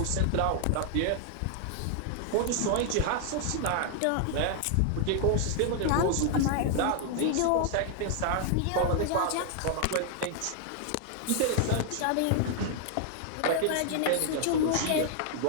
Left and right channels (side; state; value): both; different; correlation 0.00